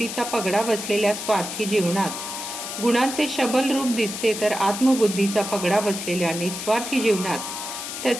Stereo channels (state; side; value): noise; left; hiss, 7 dB below the sound